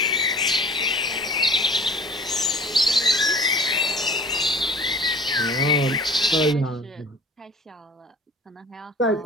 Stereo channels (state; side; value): normal; both; correlation 0.46